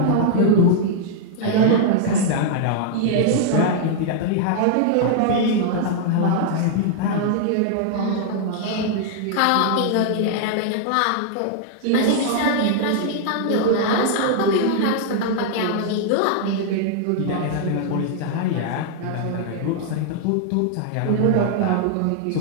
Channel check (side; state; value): both; different; correlation -0.01